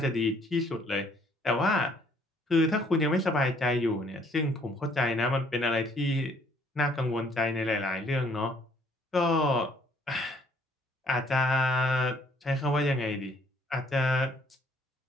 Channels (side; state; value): both; normal; correlation 0.63